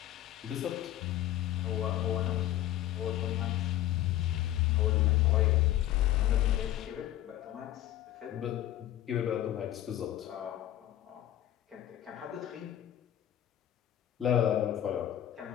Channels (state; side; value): quieter; right; 13.0 dB